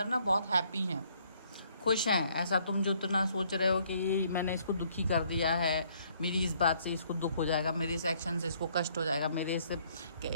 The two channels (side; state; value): both; inverted; correlation -0.65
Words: ना बहुत हैप्पी हैं, खुश हैं। ऐसा तुम जो इतना सोच रहे हो कि ये मैंने इसको दुखी कर दिया है, मेरी इस बात से इसको दुख हो जाएगा, मेरे इस एक्शन से इसको कष्ट हो जाएगा, मेरे से